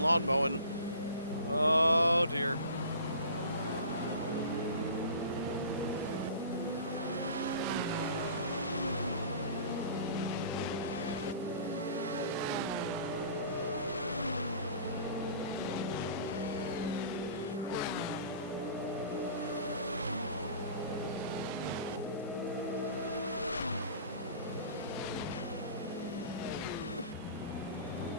mowing. Oh dear.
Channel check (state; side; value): inverted; both; correlation -0.42